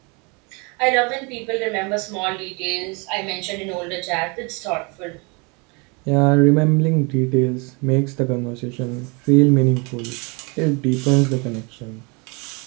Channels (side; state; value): left; quieter; 30.5 dB